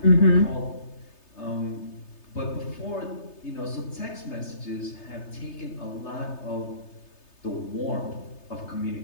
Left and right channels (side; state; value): right; late; 3.3 ms